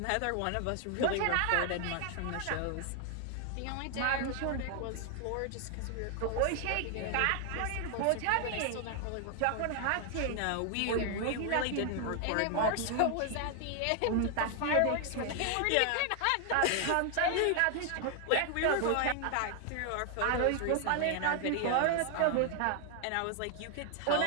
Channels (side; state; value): both; different; correlation 0.00